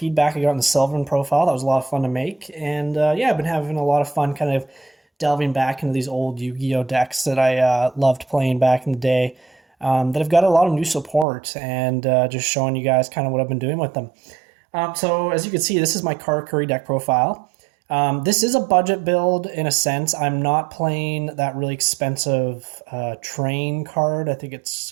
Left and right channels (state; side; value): drops out; left; at 11.2 s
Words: I got on the Sylvan profile. That was a lot of fun to make. And yeah, I've been having a lot of fun kind of delving back into these old Yu-Gi-Oh decks that I loved playing back in the day that have got a lot of new support and just showing you guys kind of what I've been doing with them. So as you can see, this is my Karakuri deck profile. This is a budget build in a sense. I'm not playing that really expensive train card. I think it's